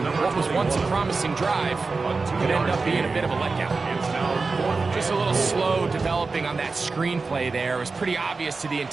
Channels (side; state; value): left; quieter; 4.1 dB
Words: what was once a promising drive could end up being a bit of a letdown. Just a little slow developing on that screenplay there. It was pretty obvious to the